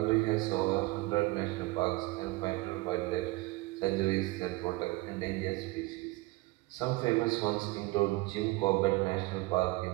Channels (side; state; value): left; quieter; 21.5 dB